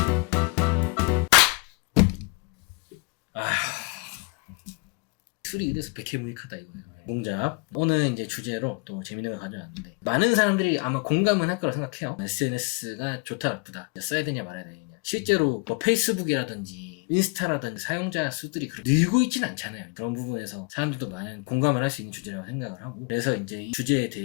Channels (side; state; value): right; quieter; 31.8 dB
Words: 술이 이래서 백해무익하다 이거예요. 몽잡. 오늘 이제 주제로 또 재밌는 걸 가져왔는데 많은 사람들이 아마 공감은 할 거라 생각해요. SNS가 좋다 나쁘다 써야 되냐 말아야 되냐. 실제로 뭐 페이스북이라든지 인스타라든지 사용자 수들이 늘고 있지는 않잖아요. 그런 부분에서 사람들도 많은 공감을 할 수 있는 주제라고 생각을 하고 그래서 이제 이 주제에